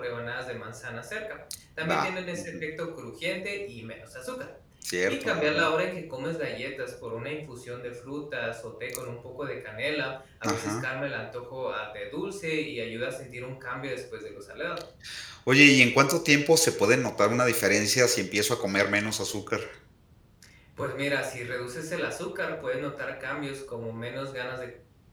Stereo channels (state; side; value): identical; both; correlation 1.00